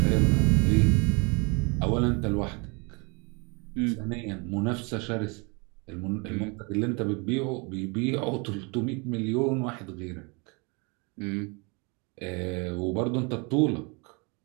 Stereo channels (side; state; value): left; quieter; 31.3 dB